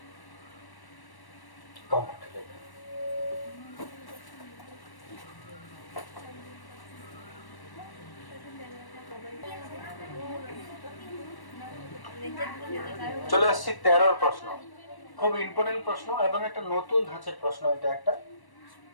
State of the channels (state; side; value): late; right; 1.1 ms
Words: চলে আসছি 13 প্রশ্ন। খুব ইম্পর্টেন্ট প্রশ্ন এবং একটা নতুন ধাঁচের প্রশ্ন। এটা একটা